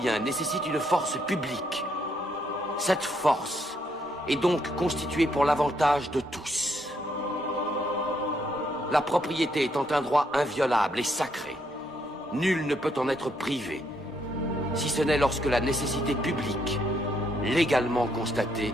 nécessite une force publique. Cette force est donc constituée pour l'avantage de tous. La propriété étant un droit inviolable et sacré, nul ne peut en être privé, si ce n'est lorsque la nécessité publique, légalement constatée,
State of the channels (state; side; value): normal; both; correlation 0.74